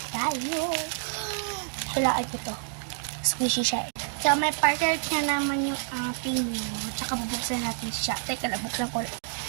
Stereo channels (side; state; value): left; silent; digital silence